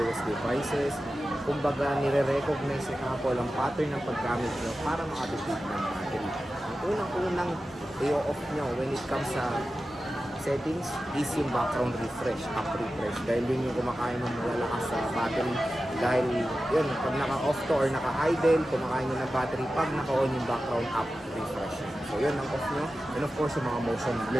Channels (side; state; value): both; normal; correlation 0.93